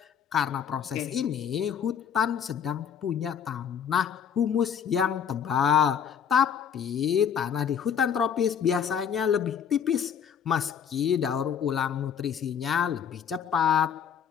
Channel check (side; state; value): right; quieter; 7.9 dB